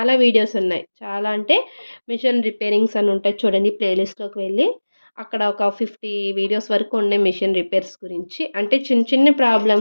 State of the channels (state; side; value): inverted; both; correlation -1.00